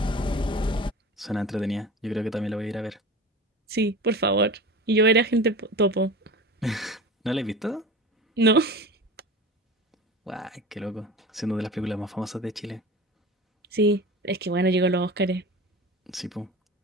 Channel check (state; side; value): normal; both; correlation 0.34